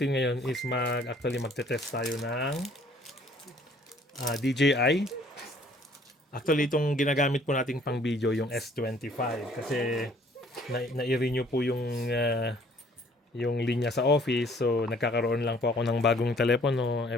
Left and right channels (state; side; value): normal; both; correlation 0.58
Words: ngayon is magte-test tayo ng DJI. Actually, itong ginagamit po nating pang video yung S25 kasi na-renew po yung linya sa office. So, nagkakaroon lang po ako ng bagong telepono